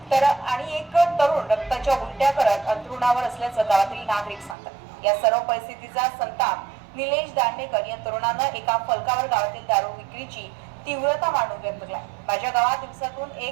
तर आणि एक तरुण रक्ताच्या उलट्या करत अंथरुणावर असल्याचं गावातील नागरिक सांगतात. या सर्व परिस्थितीचा संताप निलेश दांडेकर या तरुणानं एका फलकावर गावातील दारू विक्रीची तीव्रता मांडून व्यक्त केला. माझ्या गावात दिवसातून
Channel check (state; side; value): drops out; left; at 4.5 s